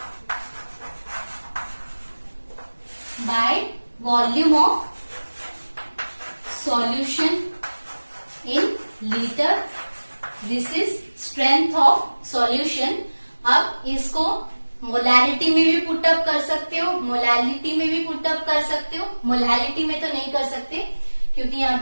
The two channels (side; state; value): both; inverted; correlation -1.00